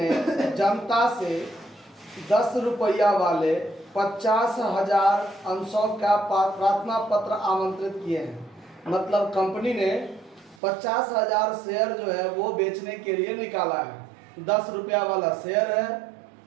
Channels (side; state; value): left; drops out; at 10.6 s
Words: जनता से 10 रुपया वाले 50,000 अंशों का प्रार्थना पत्र आमंत्रित किए हैं। मतलब कंपनी ने 50,000 शेयर जो है वो बेचने के लिए निकाला है। 10 रुपया वाला शेयर है।